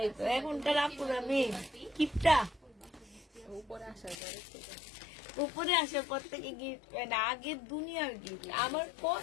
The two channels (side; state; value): right; drops out; at 4.2 s